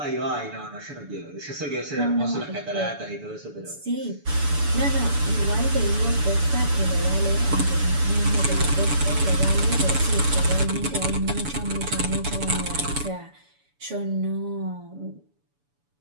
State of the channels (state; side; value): late; left; 7.0 ms